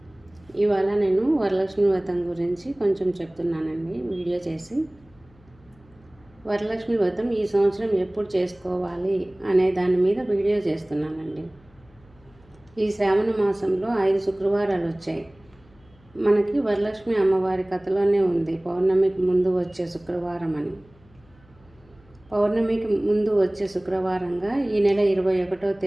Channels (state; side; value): noise; left; hum, 29 dB below the sound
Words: ఇవాళ నేను వరలక్ష్మి వ్రతం గురించి కొంచెం చెప్తున్నానండి వీడియో చేసి. వరలక్ష్మి వ్రతం ఈ సంవత్సరం ఎప్పుడు చేసుకోవాలి అనే దాని మీద వీడియో చేస్తున్నానండి. ఈ శ్రావణ మాసంలో 5 శుక్రవారాలు వచ్చాయి. మనకి వరలక్ష్మి అమ్మవారి కథలోనే ఉంది పౌర్ణమికి ముందు వచ్చే శుక్రవారం అని. పౌర్ణమికి ముందు వచ్చే శుక్రవారంగా ఈ నెల 21వ